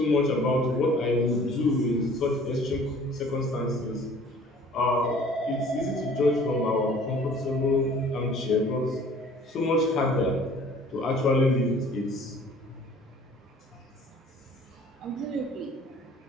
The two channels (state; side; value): normal; both; correlation 0.51